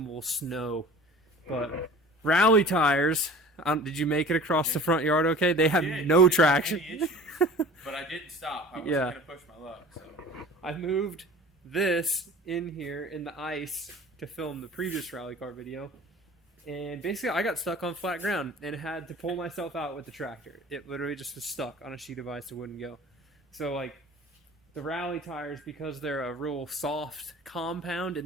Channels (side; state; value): both; normal; correlation 0.43